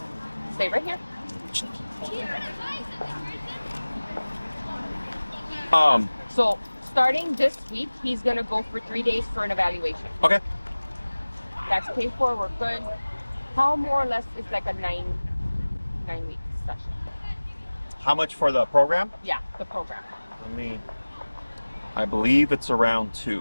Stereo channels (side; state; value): both; inverted; correlation -1.00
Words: Stay right here. So starting this week, he's gonna go for 3 days for an evaluation. Okay. That's paid for. We're good. How more or less is like a 9-week session? How much for the program? Yeah, the program. I believe it's around